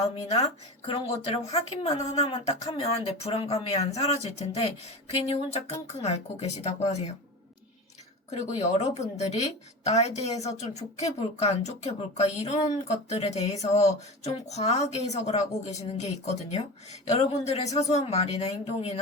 그런 것들을 확인만 하나만 딱 하면 내 불안감이 안 사라질 텐데 괜히 혼자 끙끙 앓고 계시다고 하세요. 그리고 여러분들이 나에 대해서 좀 좋게 볼까 안 좋게 볼까 이런 것들에 대해서 좀 과하게 해석을 하고 계시는 게 있거든요. 여러분들의 사소한 말이나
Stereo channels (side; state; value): both; normal; correlation 0.29